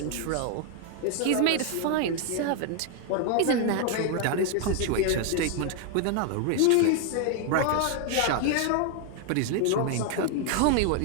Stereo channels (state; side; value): different; both; correlation 0.00